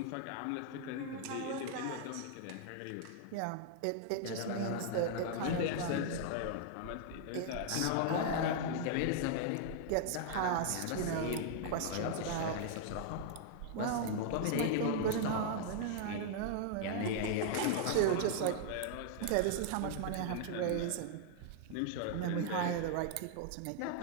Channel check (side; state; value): both; different; correlation 0.00